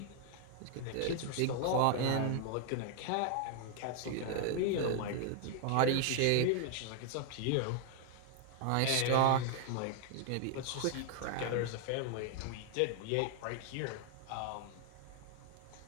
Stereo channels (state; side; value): different; both; correlation 0.00